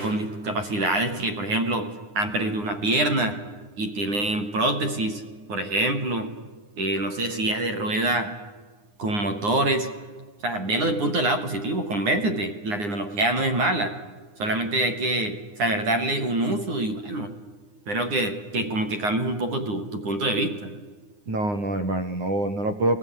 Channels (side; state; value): left; late; 9.7 ms